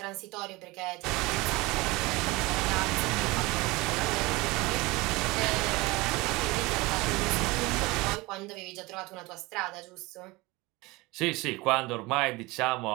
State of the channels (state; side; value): quieter; left; 22.6 dB